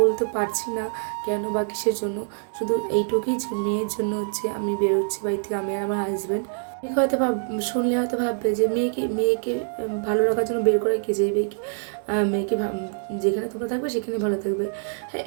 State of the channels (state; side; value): silent; left; 57 dB below the other